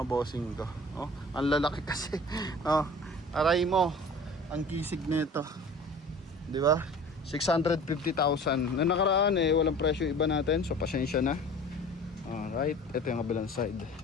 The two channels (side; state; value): both; normal; correlation 0.43